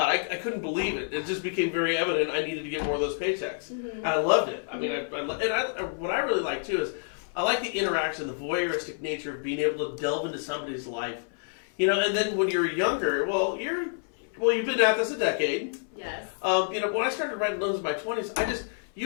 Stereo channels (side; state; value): right; silent; 59 dB below the other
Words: I couldn't believe it. It just became very evident I needed to get more of those paychecks. And I loved it. I mean, what I really like too is I like the interaction, the voyeuristic nature of being able to delve into somebody's life. You know, and then when you're younger, you've been at this a decade. Yes. You know, when I started writing loans in my 20s,